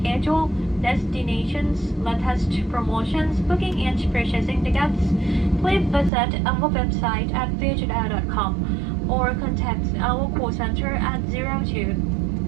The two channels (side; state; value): left; drops out; at 6.1 s